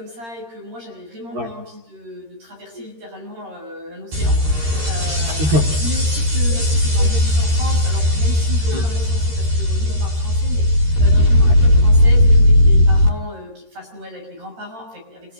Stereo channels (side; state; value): left; late; 13 ms